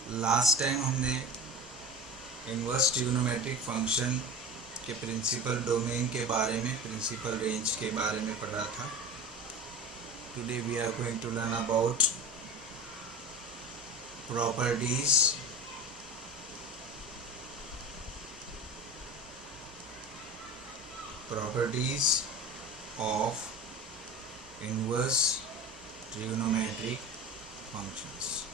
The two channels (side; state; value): both; normal; correlation 0.33